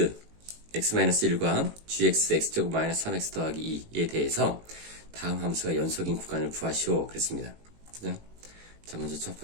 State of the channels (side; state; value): left; late; 18 ms